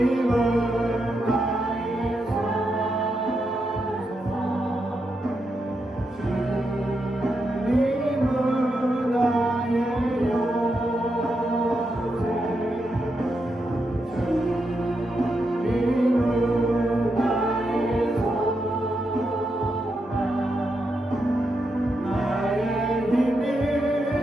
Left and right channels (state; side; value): normal; both; correlation 0.84